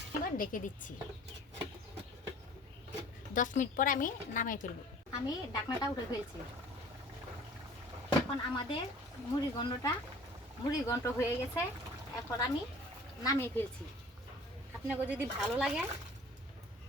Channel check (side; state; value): both; normal; correlation 0.48